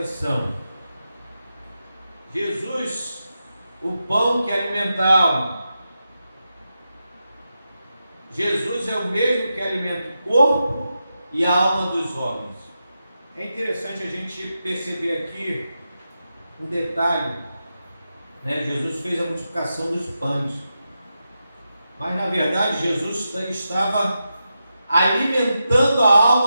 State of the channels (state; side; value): inverted; both; correlation -0.89